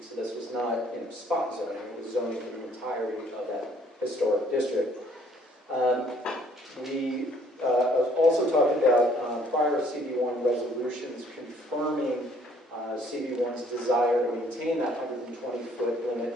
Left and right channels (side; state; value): both; normal; correlation 0.61